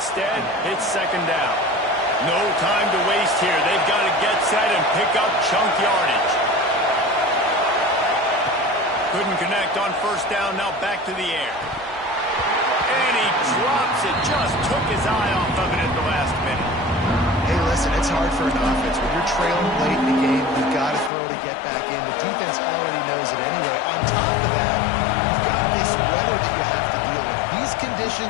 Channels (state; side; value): drops out; right; at 21.1 s